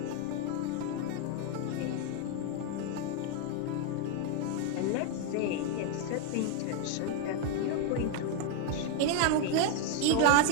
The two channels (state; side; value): different; both; correlation 0.00